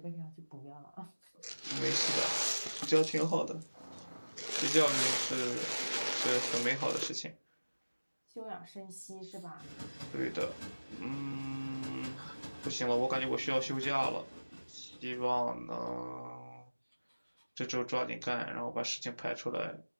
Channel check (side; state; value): both; inverted; correlation -1.00